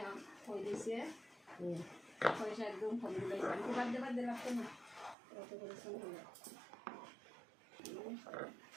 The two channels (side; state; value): left; drops out; at 5.2 s